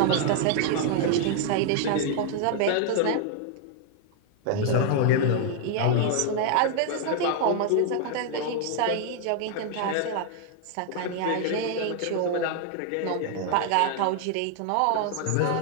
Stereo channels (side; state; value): both; different; correlation 0.00